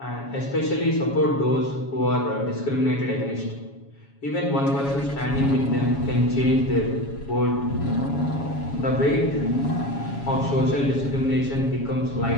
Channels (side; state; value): right; late; 7.2 ms